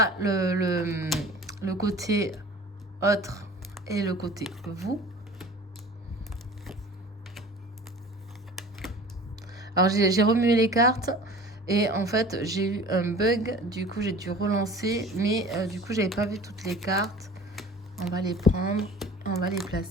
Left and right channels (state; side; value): normal; both; correlation 0.43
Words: le côté autre et le côté vous. Alors, j'ai remué les cartes et en fait, j'ai eu un bug. Du coup, j'ai dû relancer. Mais du coup, j'avais pas vu toutes les cartes. On va les prendre. On va les